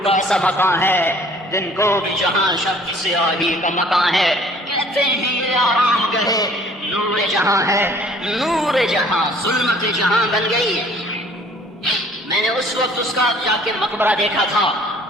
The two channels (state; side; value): normal; both; correlation 0.55